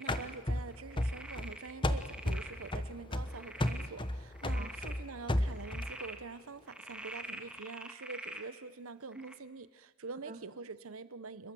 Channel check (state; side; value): normal; both; correlation 0.69